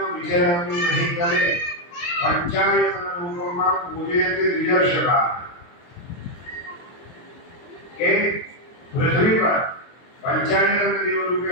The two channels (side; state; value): right; late; 23 ms